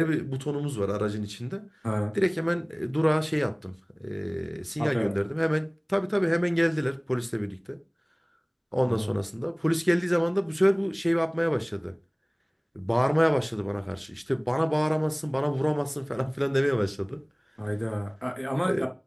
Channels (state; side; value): identical; both; correlation 1.00